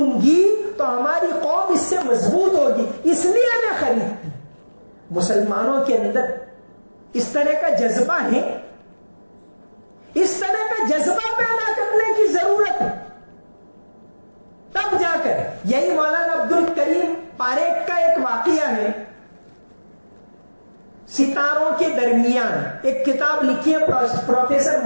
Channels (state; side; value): inverted; both; correlation -1.00